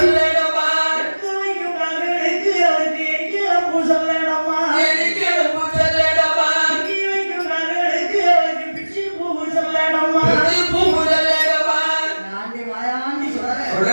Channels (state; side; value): inverted; both; correlation -1.00